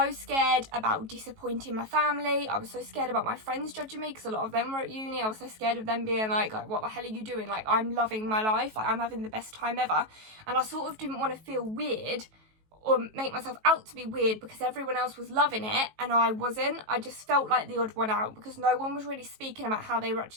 scared about disappointing my family. I was so scared about my friends judging me, because a lot of them were at uni. I was so scared of them being like, what the hell are you doing? Like, I'm loving my life, like I'm having the best time ever. And I sort of didn't want to feel weird or make myself out to be weird because everyone else was loving it and I wasn't. I just felt like the odd one out because no one was really speaking about how they were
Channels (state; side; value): late; left; 18 ms